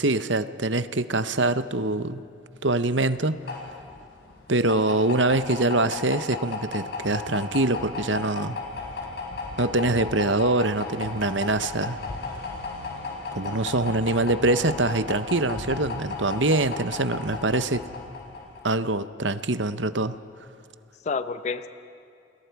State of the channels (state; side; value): normal; both; correlation 0.07